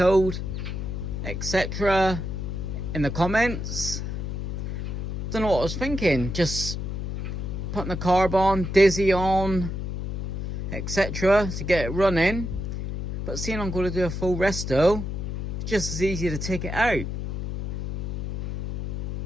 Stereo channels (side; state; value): left; noise; hum, 4 dB below the sound